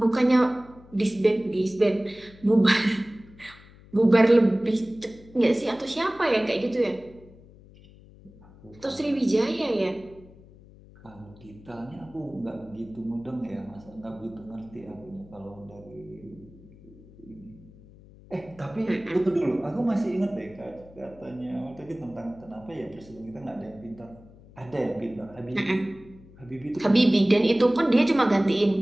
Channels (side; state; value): left; noise; hum, 23 dB below the sound